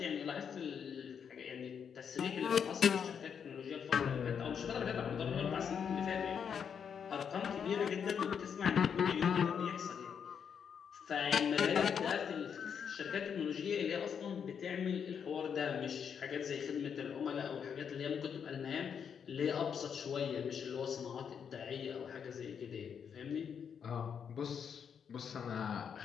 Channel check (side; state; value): right; quieter; 7.3 dB